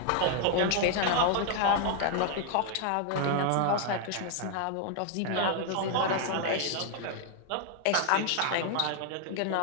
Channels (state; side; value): different; both; correlation 0.00